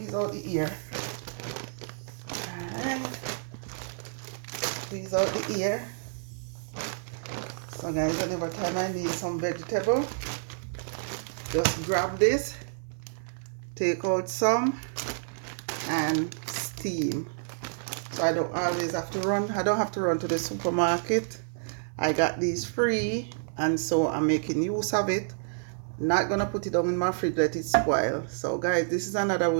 out the ear. Alright. Squeeze out the ear. So guys, whenever time I need some vegetable, just grab this, take out some, and steam. So I don't always have to run. I don't have to run to the supermarket. I got these free, and so I'm making use of it. Not gonna put it down in my fridge, let it spoil. So guys, this is another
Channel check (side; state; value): left; silent; 58 dB below the other